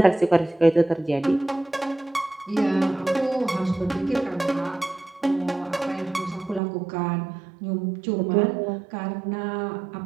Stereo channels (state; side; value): drops out; left; at 6.6 s